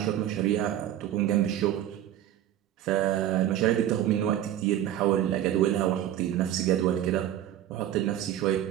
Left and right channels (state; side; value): quieter; left; 11.9 dB